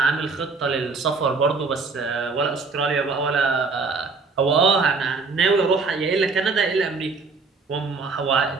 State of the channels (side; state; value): left; quieter; 4.3 dB